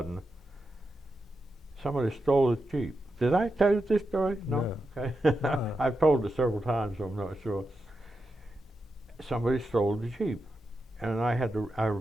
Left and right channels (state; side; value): normal; both; correlation 0.88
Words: somebody stole his Jeep. Did I tell you this story? No? Okay. I've told it several times, so I'm not sure. Somebody stole the Jeep. And I